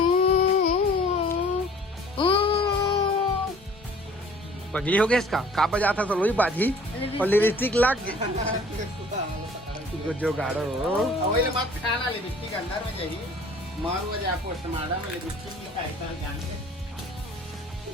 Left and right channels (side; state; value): both; normal; correlation 0.51